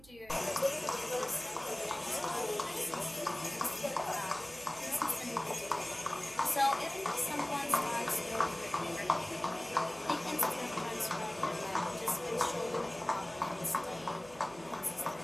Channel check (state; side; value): noise; right; hum, 22 dB below the sound